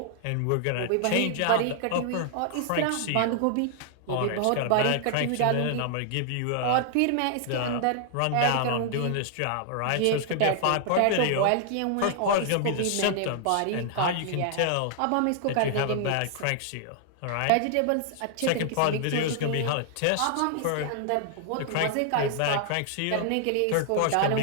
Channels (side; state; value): both; different; correlation 0.00